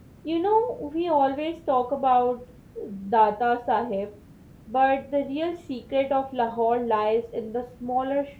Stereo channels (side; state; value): both; identical; correlation 1.00